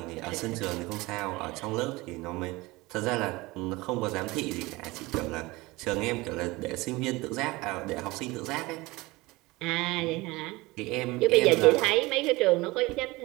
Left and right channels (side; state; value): left; quieter; 21.7 dB